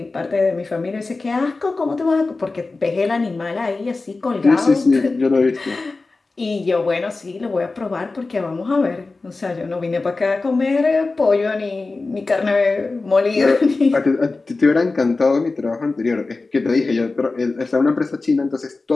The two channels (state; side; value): quieter; right; 3.6 dB